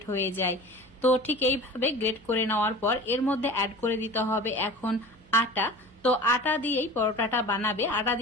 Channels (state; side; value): noise; right; hum, 28 dB below the sound